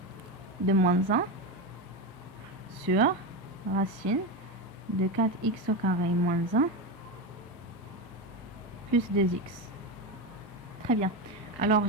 de moins 1 sur racine de 4x au carré moins 1 plus 2x. Très bien. Alors,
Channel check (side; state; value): both; normal; correlation 0.15